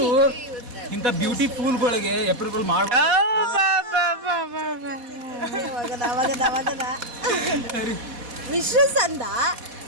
ಇಂಥ ಬ್ಯೂಟಿ ಫೂಲ್ಗಳಿಗೆ ಏಪ್ರಿಲ್ ಫುಲ್ ಮಾಡ ವಿಶಸ್ ಅಂದ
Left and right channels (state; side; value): late; left; 4.1 ms